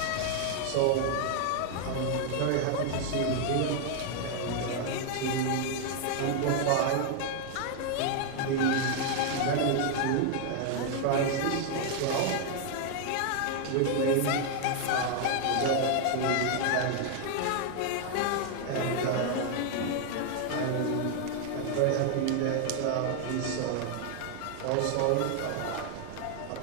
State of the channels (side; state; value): both; different; correlation 0.00